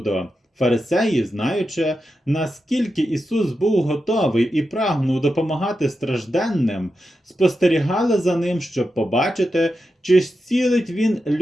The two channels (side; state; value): both; normal; correlation 0.89